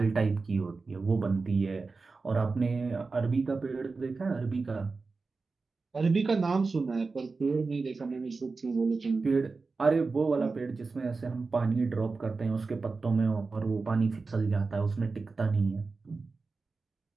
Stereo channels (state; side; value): quieter; left; 4.1 dB